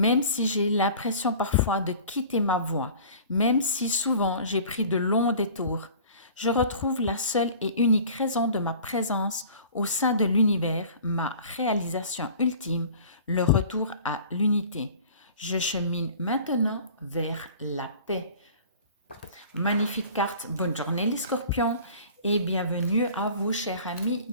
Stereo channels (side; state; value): both; inverted; correlation -0.45